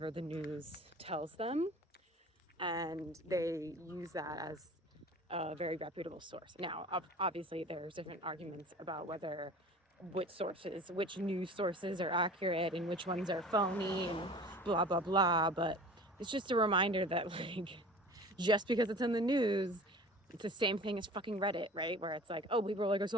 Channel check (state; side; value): normal; both; correlation 0.41